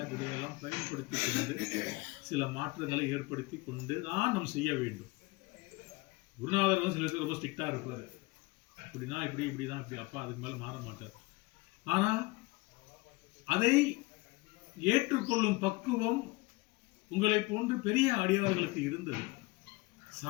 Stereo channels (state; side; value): quieter; right; 23.8 dB